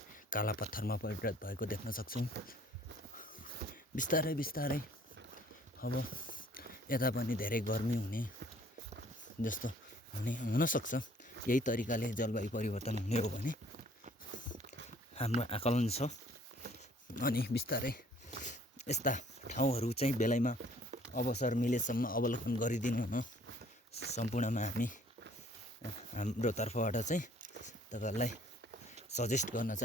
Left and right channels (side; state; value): both; normal; correlation 0.58